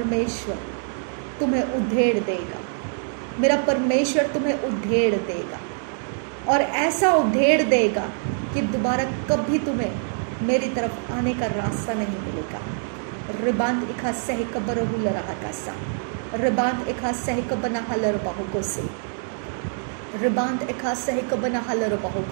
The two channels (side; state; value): left; silent; digital silence